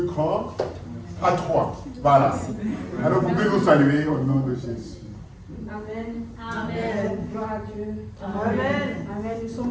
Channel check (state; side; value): identical; both; correlation 1.00